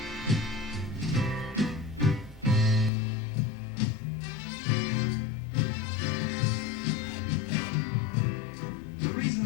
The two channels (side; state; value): right; drops out; at 2.9 s